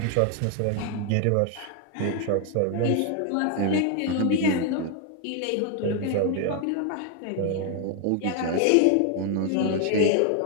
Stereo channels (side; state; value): both; different; correlation 0.00